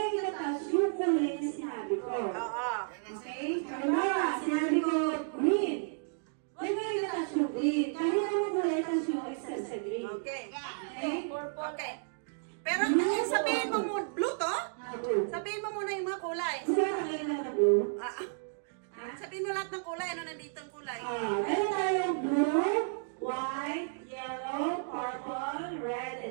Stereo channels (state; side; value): silent; left; digital silence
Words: tatouch yung kulay na sinabi ko. Oo. Okay? Halimbawa, sinabi ko green. Huwag kayong tatouch yung green. Kahit anong kulay, touch yung extra sa green. Okay. Okay? Okay. Pero sabihin mo muna, blue to? Blue. Sabihin mo muna yung mga kulay. Gusto mo tayo na blue? Sabihin mo lahat ng kulay. Ano nandito ang kulay? Meron tayong blue, white, yellow, purple, red,